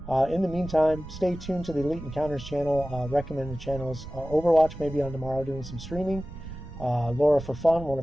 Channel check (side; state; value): right; noise; rumble, 13 dB below the sound